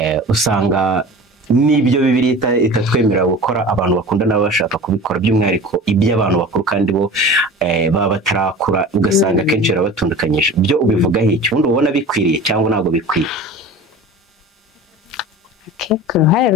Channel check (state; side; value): normal; both; correlation 0.37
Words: usanga n'ibyo Bibiliya itatwemerera gukora abantu bakundana baba bashaka kubikora, by'umwihariko iby'abantu bakuru kandi bo baba batarakura, ugasanga akenshi barabatundukanyije. Byo ubivugaho iki? Ubundi ubona bikwiriye cyangwa ntabwo bikwiye? Ku ruhare